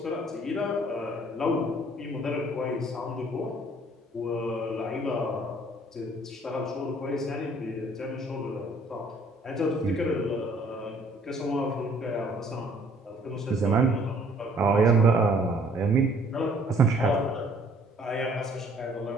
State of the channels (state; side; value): normal; both; correlation 0.59